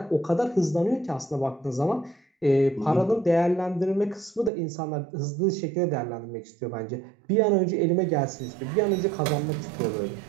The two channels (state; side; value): drops out; left; at 4.5 s